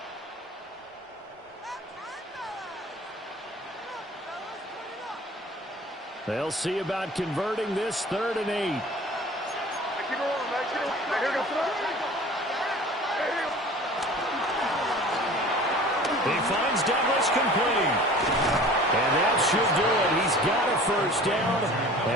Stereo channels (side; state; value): both; normal; correlation 0.43